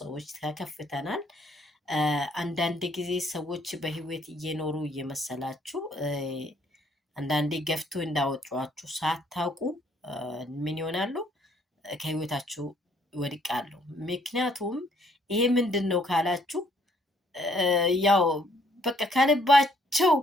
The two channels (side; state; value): both; normal; correlation 0.66